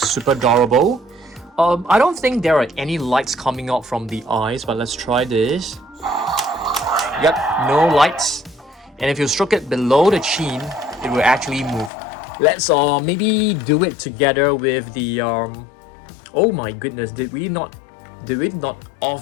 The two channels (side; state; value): right; drops out; at 11.9 s